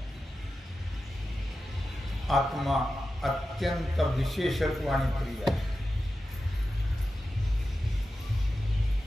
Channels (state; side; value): normal; both; correlation 0.92